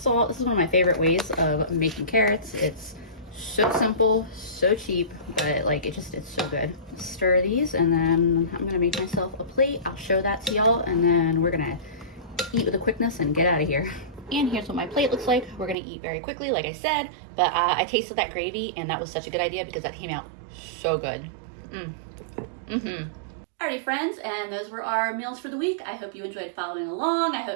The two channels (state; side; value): drops out; left; at 15.8 s